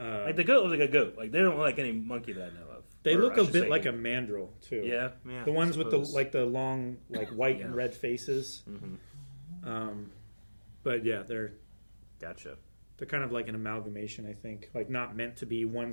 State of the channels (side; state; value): both; inverted; correlation -1.00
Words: like the goat looks like a goat. Like they don't look like any monkey that I know of. They look a bit like a mandrill too. Yeah. The ones with the long like white and red faces. Mm-hmm. But yeah, they're gotcha. They're kind of like an amalgamation, I think. Like not meant to be one